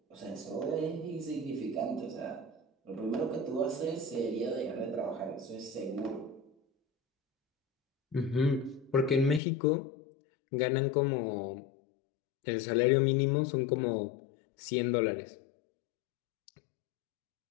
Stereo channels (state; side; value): drops out; right; at 9.4 s